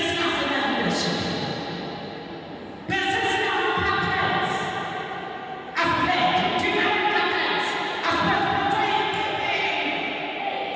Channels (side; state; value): both; identical; correlation 1.00